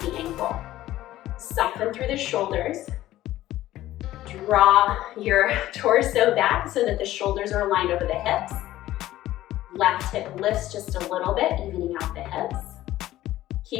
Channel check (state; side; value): quieter; right; 14.7 dB